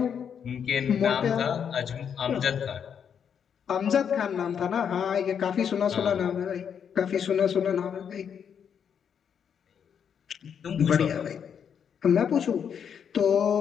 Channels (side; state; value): right; quieter; 7.7 dB